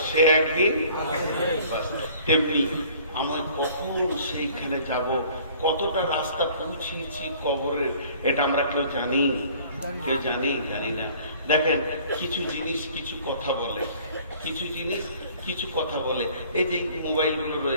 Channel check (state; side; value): inverted; both; correlation -0.53